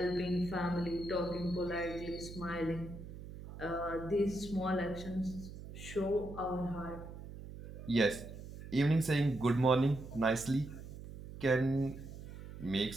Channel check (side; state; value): right; noise; hum, 12 dB below the sound